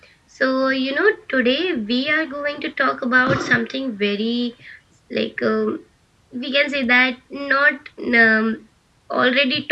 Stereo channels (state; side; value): identical; both; correlation 1.00